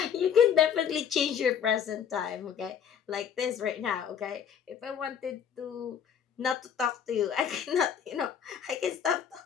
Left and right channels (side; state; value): right; quieter; 8.0 dB